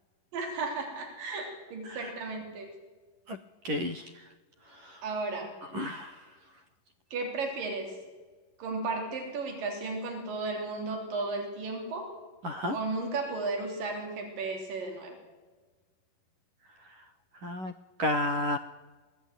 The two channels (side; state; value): left; late; 11 ms